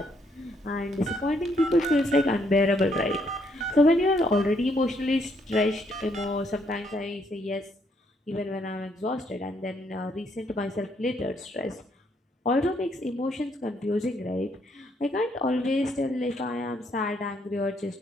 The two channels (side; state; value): both; normal; correlation 0.71